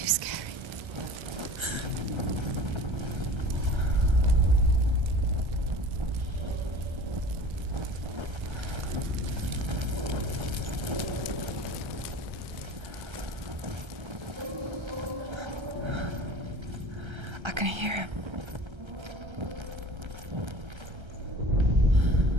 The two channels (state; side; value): late; left; 1.3 ms